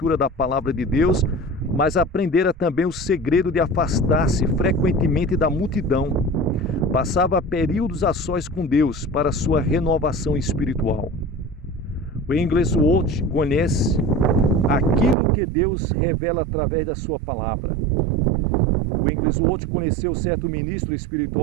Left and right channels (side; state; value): left; drops out; at 15.2 s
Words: da palavra de Deus, mas aprendera também o segredo de afastar-se frequentemente da multidão. Passava períodos a sós com Deus para sua renovação espiritual. O Wigglesworth conhece aquilo que Deus revela através da sua palavra. O Wigglesworth conheceu certo ministro